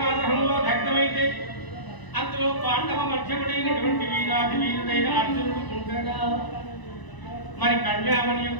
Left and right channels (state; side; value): late; right; 1.0 ms